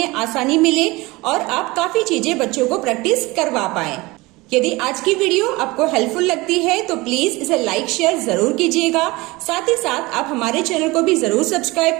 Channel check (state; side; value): quieter; left; 22.0 dB